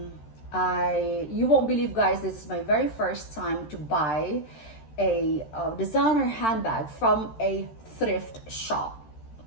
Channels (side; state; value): right; late; 13 ms